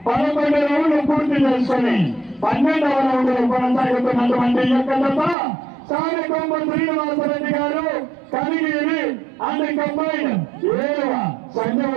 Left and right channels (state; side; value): drops out; left; at 5.4 s